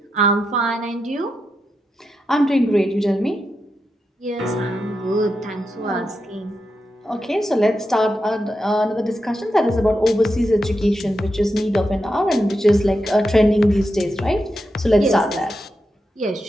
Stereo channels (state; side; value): normal; both; correlation 0.87